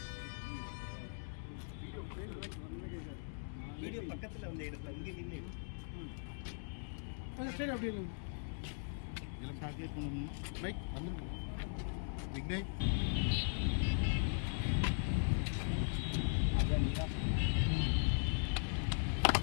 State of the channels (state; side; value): silent; right; digital silence